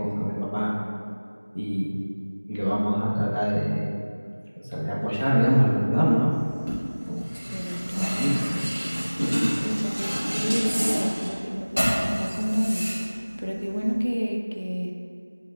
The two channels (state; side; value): inverted; both; correlation -1.00